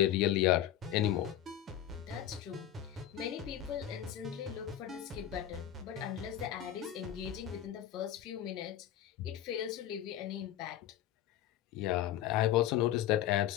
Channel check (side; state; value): right; quieter; 11.5 dB